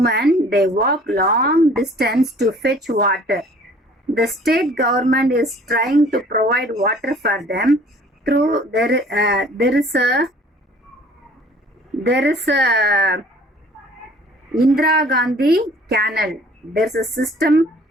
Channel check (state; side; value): normal; both; correlation 0.52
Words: they walk long distance to fetch water. The state government is trying to provide water for them through there is a Indira Gandhi canal. There's a system